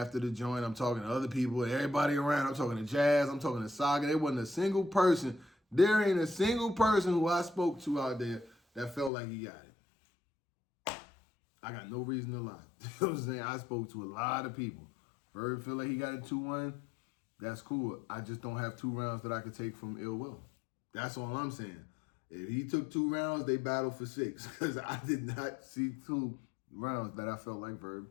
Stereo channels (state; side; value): drops out; right; at 9.1 s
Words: the joint. I'm talking to other people, everybody around. I'm talking to Jazz. I'm talking to Saga. There wasn't a single person. There ain't a single person who I spoke to out there that felt like he got it. I got no reason to lie. You know what I'm saying? I spoke to a lot of people. Verb feel like he got it 2-1. That's cool. I just don't have 2 rounds that I could take from Ill Will. That's all I'm saying. If he took 2 rounds, they battled for 6. Because I did not see 2 rounds that I felt like